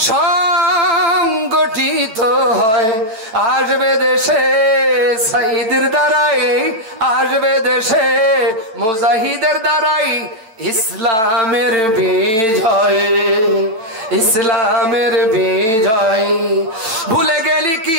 সংগঠিত হয়, আসবে দেশে সাইদের দ্বারাই, আসবে দেশে মুজাহিদের দ্বারাই ইসলামের বিজয়, ইসলামের বিজয়। ভুলে গেলি কি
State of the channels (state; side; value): late; left; 8.9 ms